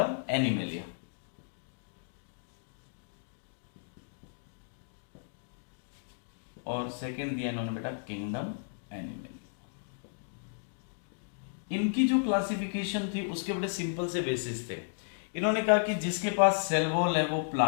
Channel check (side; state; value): right; silent; digital silence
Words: एनिमलिया। और सेकंड दिया इन्होंने बेटा किंगडम एनिमल। इनकी जो क्लासिफिकेशन थी उसके बड़े सिंपल से बेसिस थे। इन्होंने कहा कि जिसके पास सेल वॉल है वो